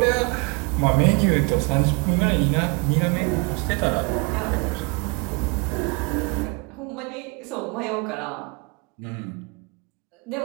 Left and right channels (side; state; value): left; quieter; 30.1 dB